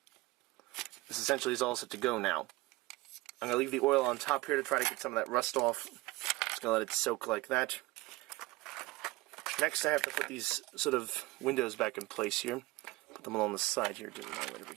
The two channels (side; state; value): left; quieter; 20.7 dB